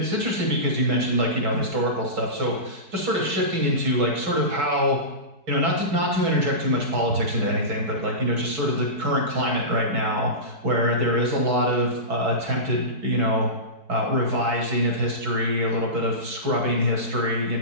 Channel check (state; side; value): late; left; 4.6 ms